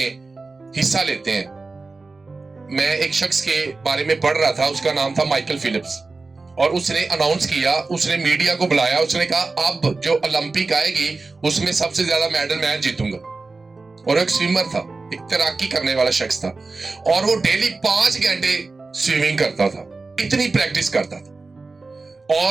हिस्सा लेते हैं। मैं एक शख्स के बारे में पढ़ रहा था, उसका नाम था माइकल फिलिप्स, और उसने अनाउंस किया, उसने मीडिया को बुलाया, उसने कहा अब जो ओलंपिक आएगी उसमें सबसे ज्यादा मेडल मैं जीतूंगा। और एक स्विमर था, एक तैराकी करने वाला शख्स था, और वो डेली 5 घंटे स्विमिंग करता था, इतनी प्रैक्टिस करता था।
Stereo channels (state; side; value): quieter; left; 3.7 dB